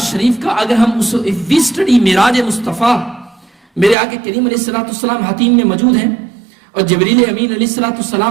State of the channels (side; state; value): left; drops out; at 4.0 s